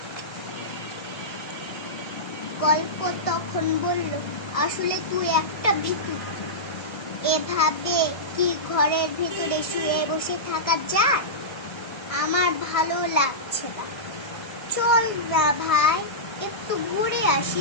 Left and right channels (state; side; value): late; right; 1.7 ms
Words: গল্প তখন বলল, আসলে তুই একটা ভিখারি, এভাবে কি ঘরের ভিতরে শুয়ে বসে থাকা যায়? আমার ভালো লাগছে না, চল না ভাই একটু ঘুরে